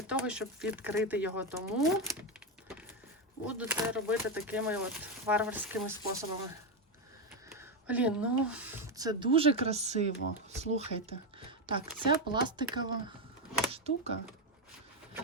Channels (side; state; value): both; normal; correlation 0.08